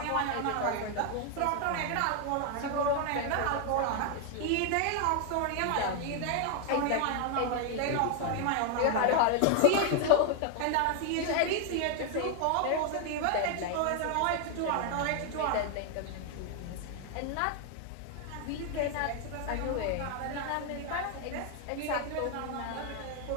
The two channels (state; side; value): different; both; correlation 0.00